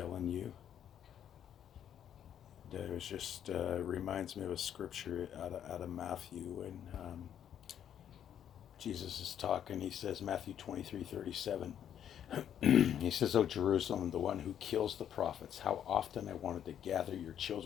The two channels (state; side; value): quieter; right; 9.6 dB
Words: you. It was just reminds me of a scripture out of Matthew, and Jesus is talking. He says, Matthew 23:37. He says, "O Jerusalem, the one who kills the prophets, how often I wanted to gather your